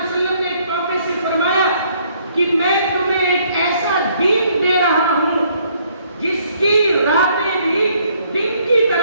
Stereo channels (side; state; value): both; inverted; correlation -0.66